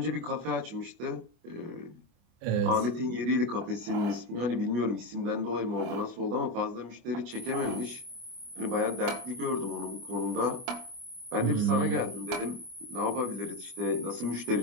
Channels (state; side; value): late; left; 25 ms